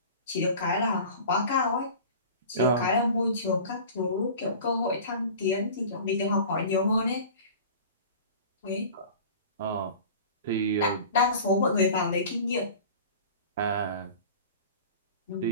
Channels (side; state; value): both; inverted; correlation -0.39